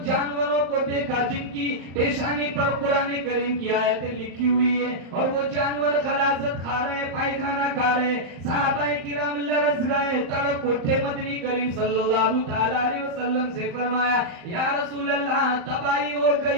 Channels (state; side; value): late; left; 34 ms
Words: जानवरों को देखा जिनकी पेशानी पर कुरान करीम की आयतें लिखी हुई है, और वो जानवर खलासत खा रहे, पायखाना खा रहे। सहाबाए किराम लरस गए, तड़प उठे, मदनी करीम सल्लल्लाहु ताला अलैहि वसल्लम से फरमाया, या रसूल अल्लाह, तबाही हो